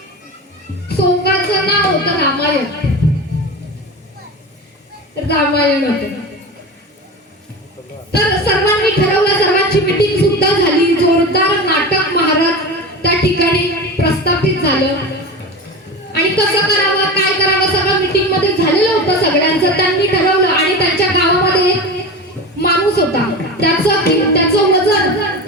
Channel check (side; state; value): both; normal; correlation 0.28